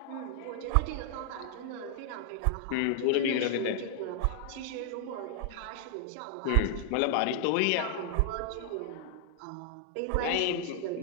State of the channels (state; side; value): different; both; correlation 0.00